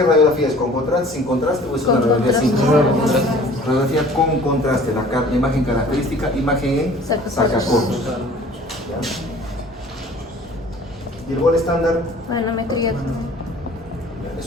radiografía es? ¿Con contraste, sin contraste o es una Con radiografía sin contraste. contraste? Radiografía con contraste, la imagen característica, imagen en sacacorchos. ¿Ya? Y el gol estándar, Manometría.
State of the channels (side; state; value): both; normal; correlation 0.50